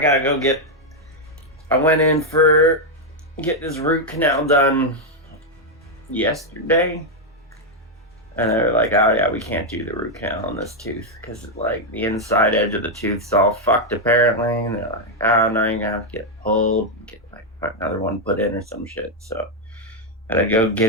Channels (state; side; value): normal; both; correlation 0.01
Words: gotta go I went in get this root canal done yesterday. And they're like, oh yeah, we can't do the root canal on this tooth because like the inside edge of the tooth's all fucked apparently. And they're like, oh, now you're gonna have to get pulled, get like another one put in or some shit. So I gotta go get